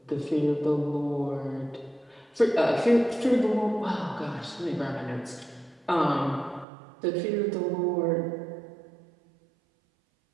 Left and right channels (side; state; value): left; drops out; at 6.7 s